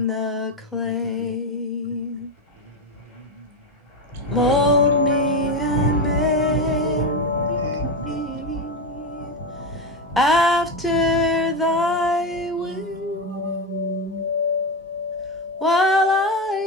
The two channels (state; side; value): normal; both; correlation 0.14